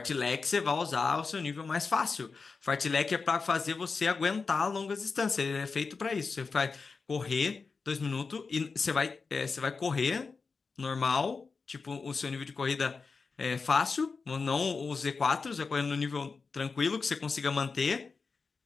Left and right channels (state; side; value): quieter; right; 4.7 dB